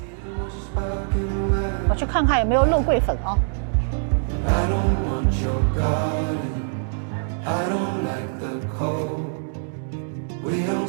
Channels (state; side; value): silent; left; digital silence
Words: 我去看看有没有肉桂粉啊。I don't want your garden. I don't like the cold. We don't